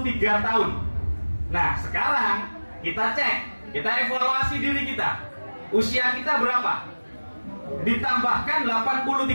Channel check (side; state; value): both; inverted; correlation -1.00